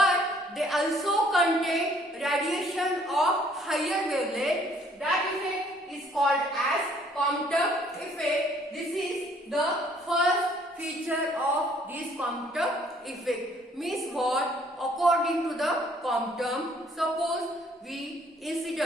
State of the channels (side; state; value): both; normal; correlation 0.61